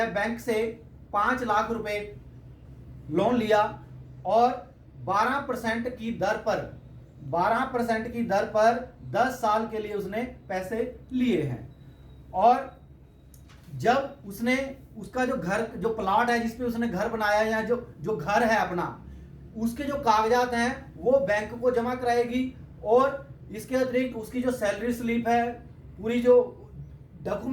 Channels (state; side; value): identical; both; correlation 1.00